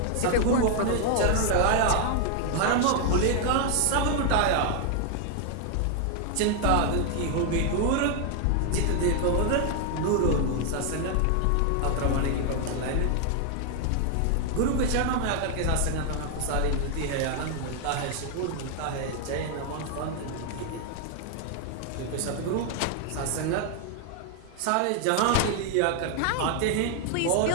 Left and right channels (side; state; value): both; different; correlation 0.00